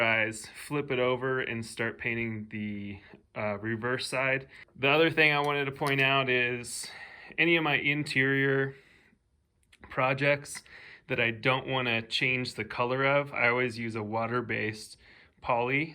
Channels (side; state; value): both; identical; correlation 1.00